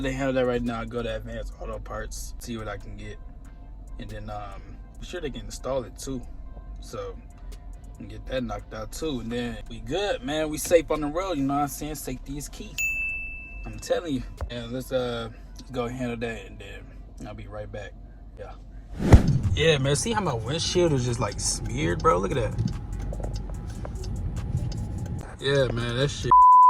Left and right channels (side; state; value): both; identical; correlation 1.00